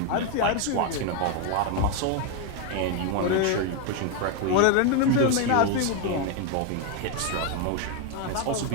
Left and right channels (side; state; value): both; different; correlation 0.01